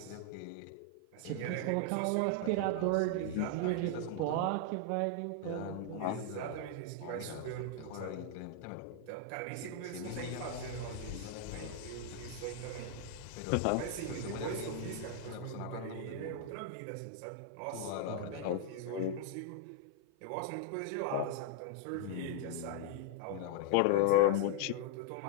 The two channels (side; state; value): both; different; correlation 0.00